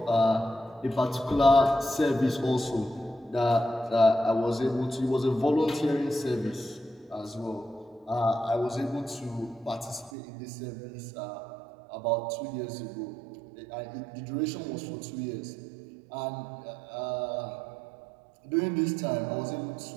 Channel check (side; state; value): left; drops out; at 10.1 s